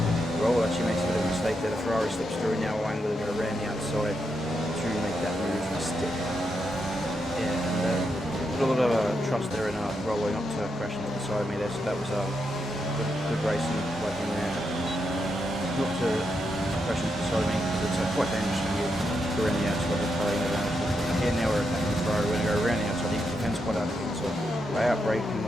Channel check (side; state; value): both; normal; correlation 0.83